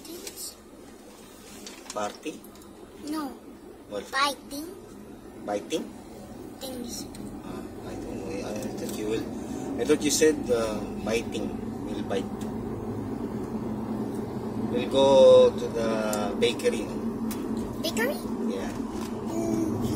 Party? No. What? Biting Biting? things. I don't know. I thought you said biting. We'll bite. We'll go to the bakery. Bakery? Yeah.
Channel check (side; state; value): both; identical; correlation 1.00